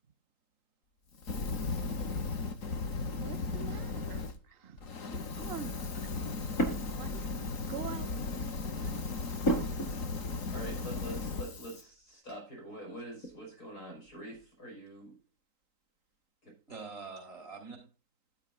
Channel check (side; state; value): right; late; 3.9 ms